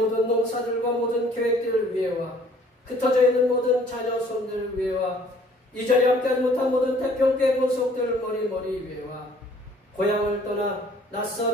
농사들과 모든 계획들을 위해와 흩어져 있는 모든 자녀 손들 위에와 이 자리에 함께하지 못한 모든 태평교회 본속들 머리 위에와 고향을 떠나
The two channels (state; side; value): normal; both; correlation 0.57